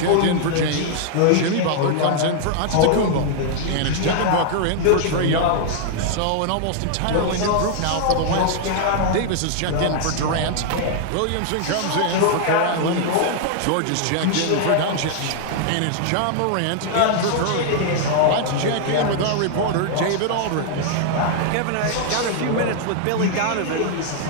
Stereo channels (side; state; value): both; different; correlation -0.01